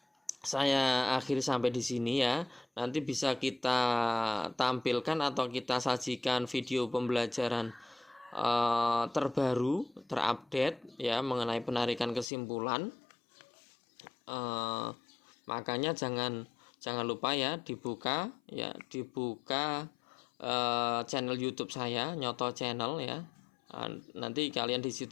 saya akhiri sampai di sini ya. Nanti bisa kita tampilkan atau kita sajikan video pembelajaran terbaru, terupdate ya mengenai penarikan kesimpulan. Makanya jangan lupa ya dibuka channel YouTube saya, Nyoto Channel ya. Nanti kalian di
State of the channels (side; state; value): right; drops out; at 12.2 s